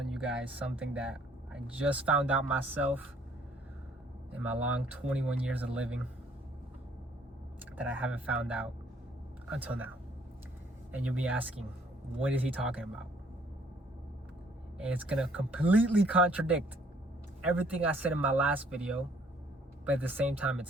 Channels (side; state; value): both; normal; correlation 0.62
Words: you guys something that I just found out myself in my long 21 years of living that I haven't found out until now. And you'll be asking, what is he talking about? And it's gonna completely contradict everything I said in my last video, but at the same time,